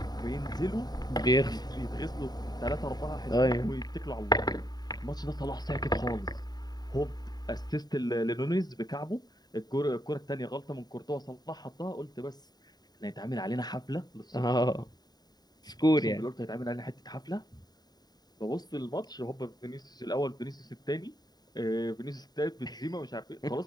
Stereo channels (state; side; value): late; right; 0.20 ms